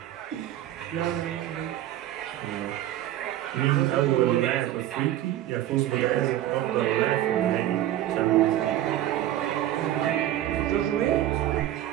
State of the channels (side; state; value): left; quieter; 13.1 dB